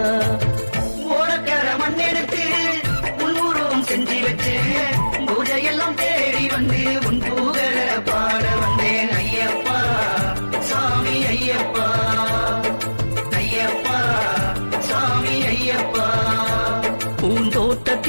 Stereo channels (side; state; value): both; inverted; correlation -1.00